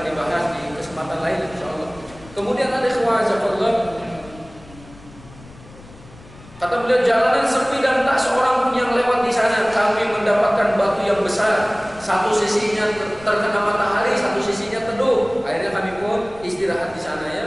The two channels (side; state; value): left; noise; rumble, 21 dB below the sound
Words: dibahas di kesempatan lain insyaallah. Kemudian ada Allah, kata beliau, jalanan sepi dan tak seorang pun yang lewat di sana. Kami mendapatkan batu yang besar, satu sisinya terkena matahari, satu sisinya teduh. Akhirnya kami pun istirahat di sana ya,